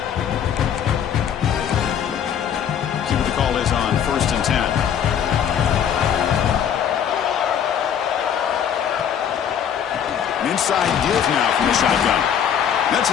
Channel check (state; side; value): quieter; right; 8.7 dB